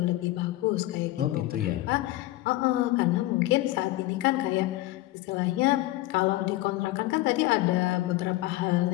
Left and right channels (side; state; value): right; quieter; 17.5 dB